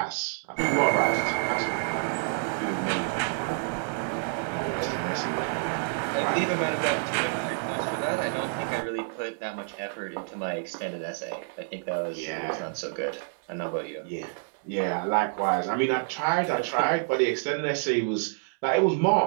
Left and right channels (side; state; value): left; silent; 59 dB below the other